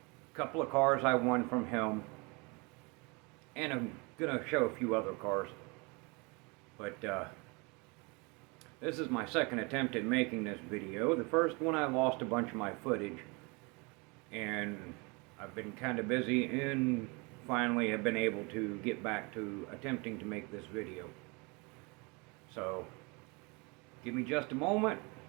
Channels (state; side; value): quieter; left; 29.0 dB